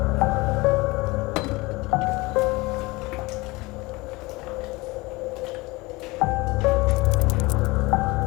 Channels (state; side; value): quieter; right; 22.9 dB